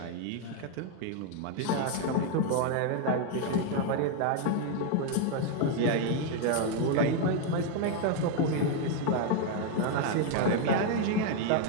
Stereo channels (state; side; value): different; both; correlation 0.01